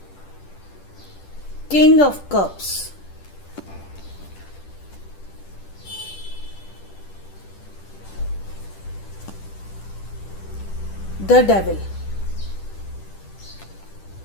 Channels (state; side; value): late; right; 10 ms